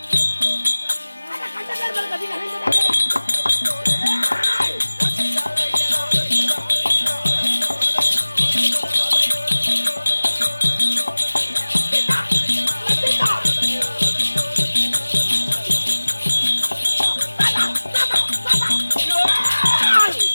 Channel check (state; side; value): inverted; both; correlation -1.00